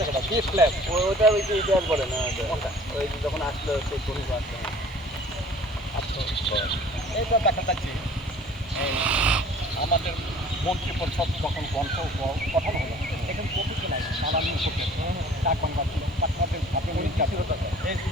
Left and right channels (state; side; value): normal; both; correlation 0.49